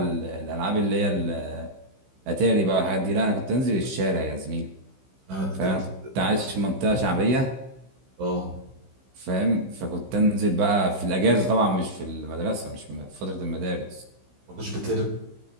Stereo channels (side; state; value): left; late; 15 ms